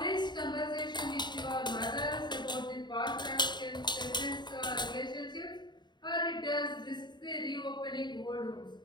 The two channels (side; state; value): right; late; 0.21 ms